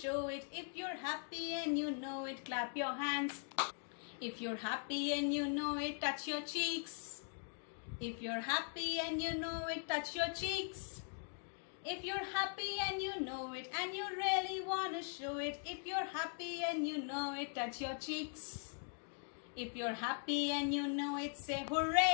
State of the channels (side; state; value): right; silent; 50 dB below the other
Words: it, if you're happy and you know it, clap your hands. If you're happy and you know it, touch your cheeks. If you're happy and you know it, touch your cheeks. If you're happy and you know it and you really want to show it, if you're happy and you know it, touch your cheeks. If you're happy and you know it, say